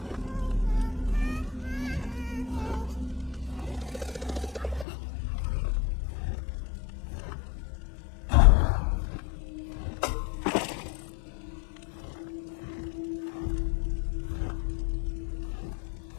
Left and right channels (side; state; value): right; drops out; at 4.9 s